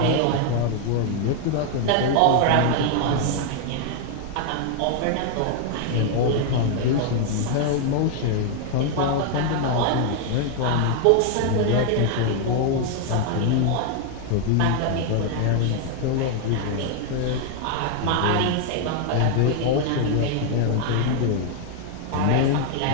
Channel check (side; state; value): both; different; correlation 0.00